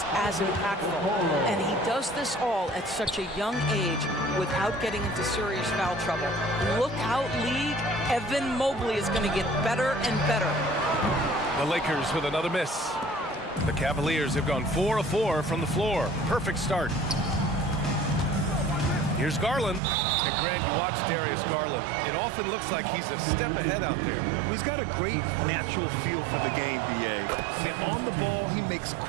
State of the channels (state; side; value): drops out; left; at 19.8 s